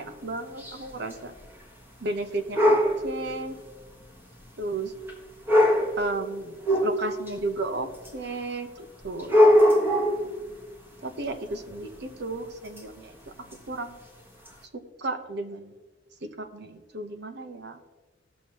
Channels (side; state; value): both; normal; correlation 0.68